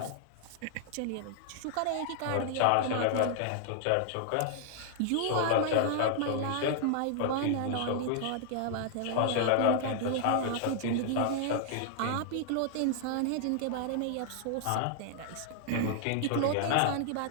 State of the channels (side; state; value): both; different; correlation 0.00